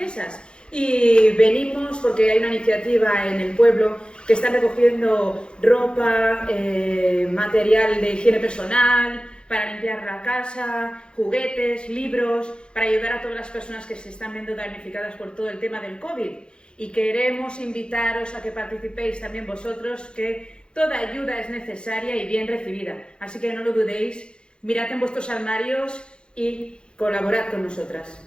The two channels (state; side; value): late; right; 0.052 ms